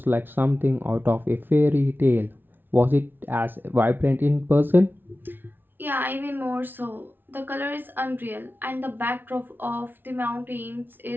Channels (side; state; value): left; late; 0.098 ms